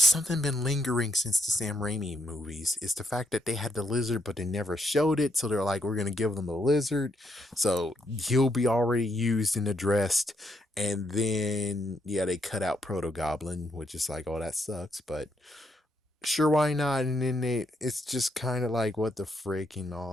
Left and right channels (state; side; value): normal; both; correlation 0.77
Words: something been lingering since the Sam Raimi movies. It's the fact that they had the lizard, but they never showed it. So they're like, we're gonna give them the lizard, so he'll be already used and addressed. And then yeah, they cut out Proto Goblin, which is like, oh, that sucks. But sure, why not? And then it's just kind of like, what the frick and